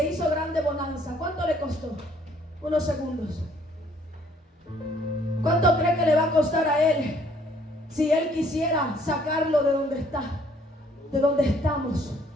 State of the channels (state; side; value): normal; both; correlation 0.62